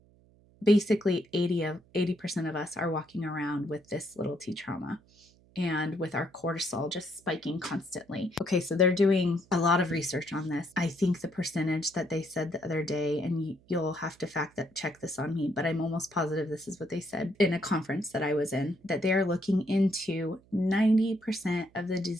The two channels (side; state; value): right; noise; hum, 29 dB below the sound